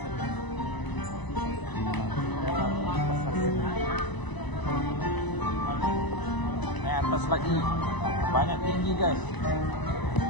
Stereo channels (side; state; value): right; late; 1.0 ms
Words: Naik atas lagi, banyak tinggi guys.